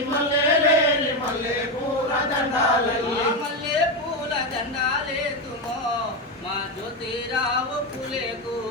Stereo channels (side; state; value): both; normal; correlation 0.12